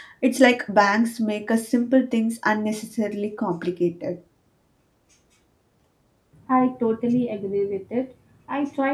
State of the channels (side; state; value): both; identical; correlation 1.00